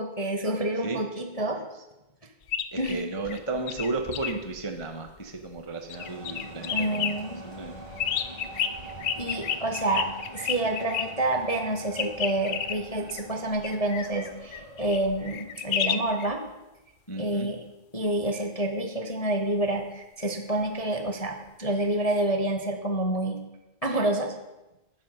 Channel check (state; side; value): late; right; 1.7 ms